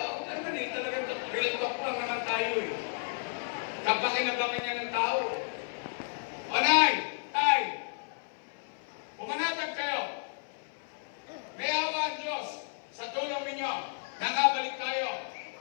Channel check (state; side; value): silent; right; 56 dB below the other